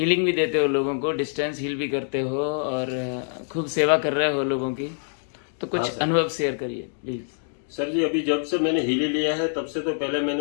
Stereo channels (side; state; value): right; silent; digital silence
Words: भी देते हो लोगों को, डिस्टेंस हील भी करते हो और खूब सेवा कर रहे हो लोगों की। तो हाँ कुछ सर। अनुभव शेयर करिए प्लीज़। सर जी, अभी जब से मैंने हीली लिया है तब से तो पहले